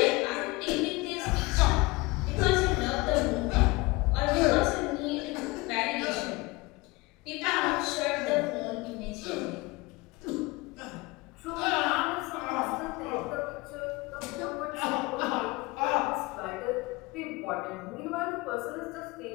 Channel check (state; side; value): quieter; right; 23.4 dB